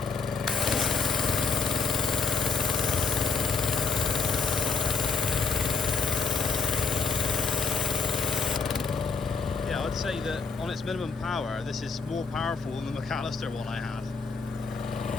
Yeah, I'd say that on its minimum power, this is more powerful than the McAllister one I had.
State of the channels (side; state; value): right; quieter; 5.0 dB